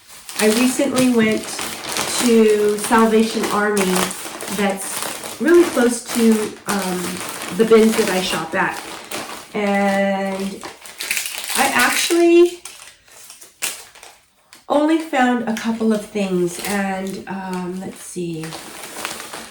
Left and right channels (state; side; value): identical; both; correlation 1.00